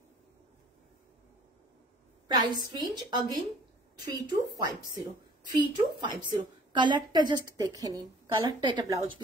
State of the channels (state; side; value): normal; both; correlation 0.53